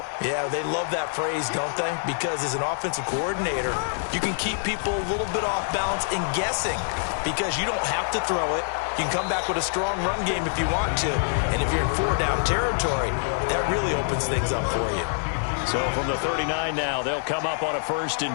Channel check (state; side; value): silent; right; digital silence